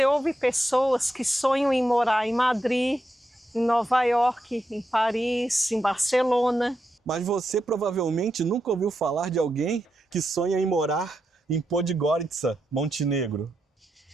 ouve pessoas que sonham em morar em Madrid, em Nova York, em Paris, em Barcelona. Mas você provavelmente nunca ouviu falar de alguém que sonha em morar em Podgorica, Montenegro.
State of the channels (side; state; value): both; normal; correlation 0.85